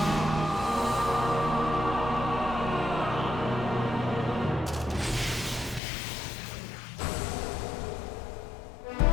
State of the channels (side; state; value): right; drops out; at 5.8 s